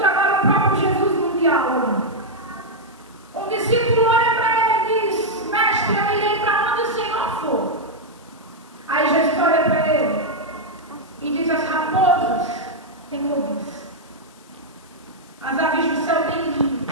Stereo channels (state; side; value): noise; left; hiss, 27 dB below the sound